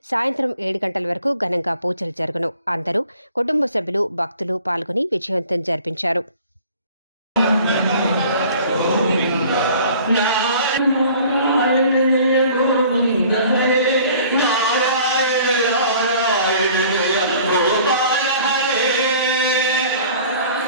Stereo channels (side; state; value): both; inverted; correlation -0.50